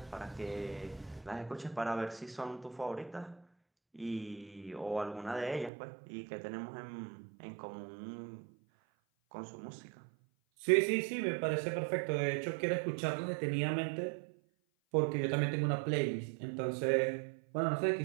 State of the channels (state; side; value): drops out; left; at 5.7 s